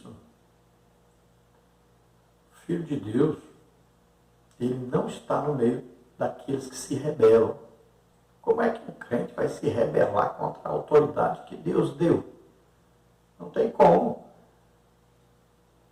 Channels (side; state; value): both; identical; correlation 1.00